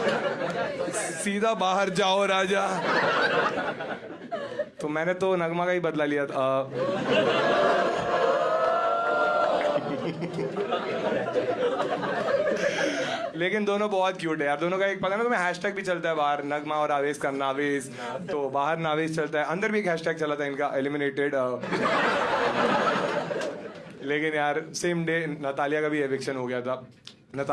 सीधा बाहर जाओ राजा। तो मैंने तो नगमा का ही बदला लिया था। लेकिन दोनों बहुत क्यूट है यार। दोनों का एक पता है ना तुम्हें, हैशटैग भी चलता है बाहर, नगमा और आवेश का नावेश। तो बाहर नावेश चलता है, अंदर भी एक हैशटैग चला था इनका, एलिमिनेटेड। लेकिन यार सेम डे नतालिया का भी एविक्शन हो गया था।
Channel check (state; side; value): identical; both; correlation 1.00